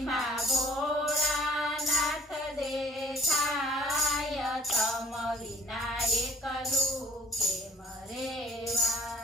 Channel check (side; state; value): both; normal; correlation 0.54